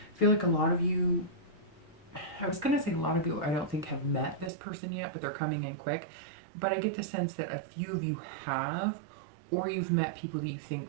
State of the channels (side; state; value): left; drops out; at 4.5 s